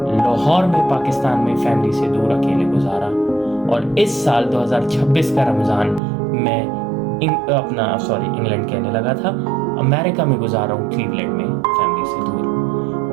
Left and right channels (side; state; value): left; drops out; at 6.0 s